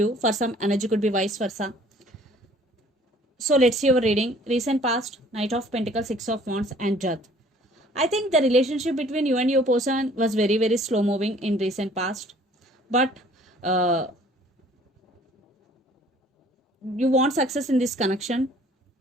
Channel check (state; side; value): normal; both; correlation 0.55